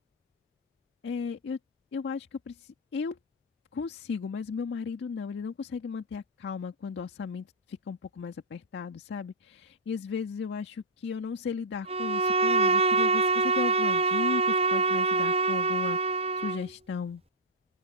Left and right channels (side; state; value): both; normal; correlation -0.17